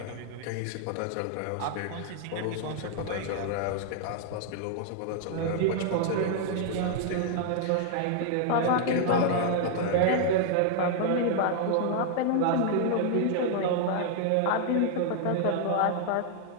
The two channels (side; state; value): both; different; correlation 0.00